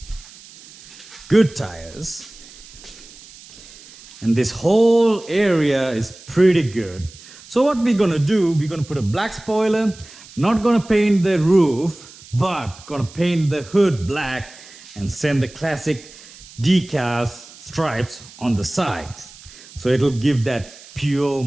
good tires. And this whole area is pretty good. So what we're gonna do, we're gonna put a black spoiler, not gonna paint the roof, but gonna paint the hood black and send the classic decals stripes on the side. So it'll give that pure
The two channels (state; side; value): noise; right; hiss, 20 dB below the sound